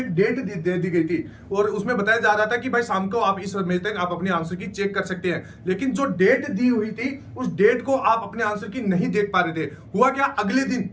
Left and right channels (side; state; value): both; identical; correlation 1.00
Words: डेट दे दी गई थी और उसमें बताया जा रहा था कि भाई शाम को आप इस समय तक आप अपने आंसर की चेक कर सकते हैं। लेकिन जो डेट दी हुई थी उस डेट को आप अपने आंसर की नहीं देख पा रहे थे। हुआ क्या, अगले दिन